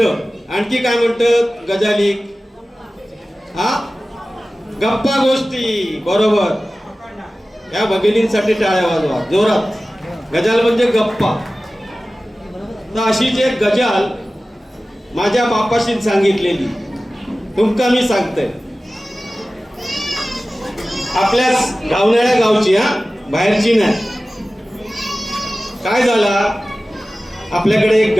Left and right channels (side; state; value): both; normal; correlation 0.96